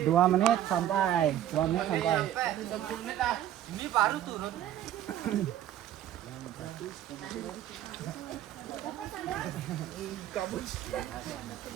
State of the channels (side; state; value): left; quieter; 11.8 dB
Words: 2 menit sampai. 2 menit sampai. Ini baru turun.